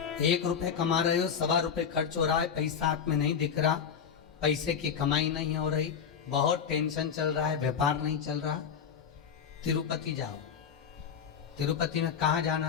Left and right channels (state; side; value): quieter; right; 7.2 dB